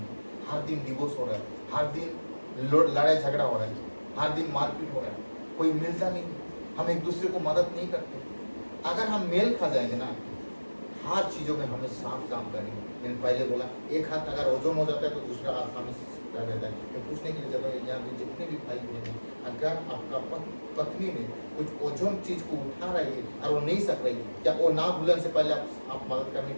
हर दिन डिवोर्स हो रहा है, हर दिन लड़ाई झगड़ा हो रहा है, हर दिन मारपीट हो रहा है, कोई मिलता नहीं, हम एक दूसरे को मदद नहीं करते। अगर हम मेल खा जाएंगे ना, हर चीजों में हमें साफ काम करेंगे। मैंने पहले बोला, एक हाथ अगर ओजन हो जाता है तो दूसरा हाथ हमें रहता है। मैं पूछने के लिए चाहता हूँ, यहाँ पे जितने भी भाई बहन हैं, अगर आपका पत्नी में कुछ ओजन चीज को उठा रही है और वो नहीं सक रही, क्या वो ना भूलने से पहले आप मदद करने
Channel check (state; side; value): inverted; both; correlation -1.00